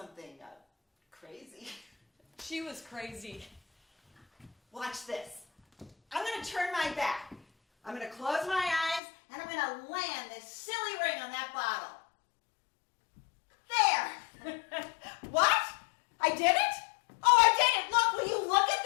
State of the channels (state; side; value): drops out; right; at 9.0 s